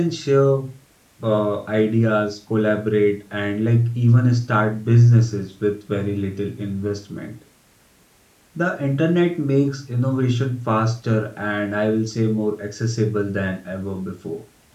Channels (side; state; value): both; identical; correlation 1.00